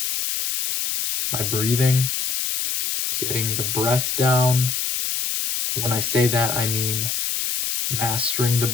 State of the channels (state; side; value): noise; left; hiss, 1 dB below the sound